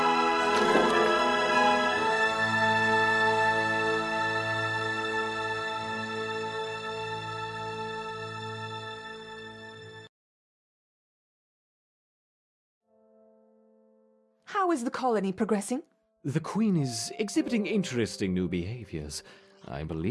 How is the colony progressing? The Queen is exhibiting interesting new behaviors. I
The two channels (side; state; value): both; identical; correlation 1.00